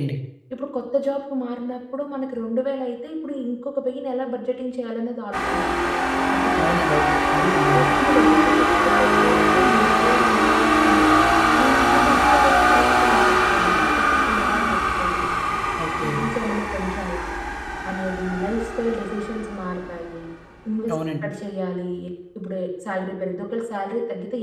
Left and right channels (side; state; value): both; identical; correlation 1.00